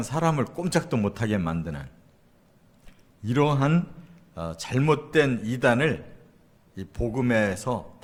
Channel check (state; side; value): identical; both; correlation 1.00